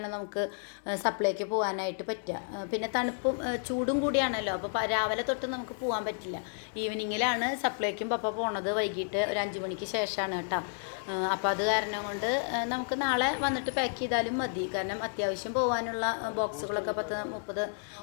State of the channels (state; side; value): silent; right; 56 dB below the other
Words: നമുക്ക് സപ്ലൈക്ക് പോകാനായിട്ട് പറ്റുക. പിന്നെ തണുപ്പും ചൂടും കൂടിയാണല്ലോ. അപ്പോൾ രാവിലെ തൊട്ട് നമുക്ക് പോകാൻ പറ്റില്ല. ഈവനിങ്ങിലാണ് സപ്ലൈക്കും പപ്പ പോണത്. വൈകിട്ട് ഒരു 5 മണിക്ക് ശേഷമാണ് കേട്ടോ. അപ്പോൾ അത് കാരണം കൊണ്ട് നമുക്ക് നാളെ വന്നിട്ട് പാക്ക് ചെയ്താലും മതി. കാരണം അത്യാവശ്യം പോകാനുള്ള ബോക്സുകളൊക്കെ 30